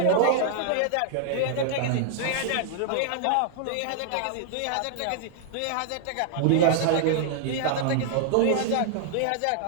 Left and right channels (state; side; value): different; both; correlation -0.01